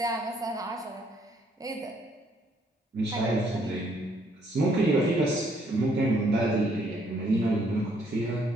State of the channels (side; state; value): both; normal; correlation 0.68